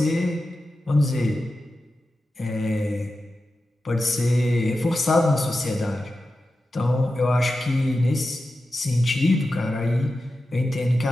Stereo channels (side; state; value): both; normal; correlation 0.92